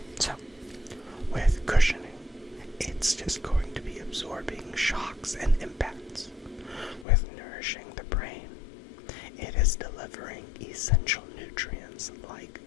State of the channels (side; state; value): right; drops out; at 7.1 s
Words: So, with cushioning, it's just going to be absorbing shocks and impacts. With nourishing the brain, it is delivering essential nutrients like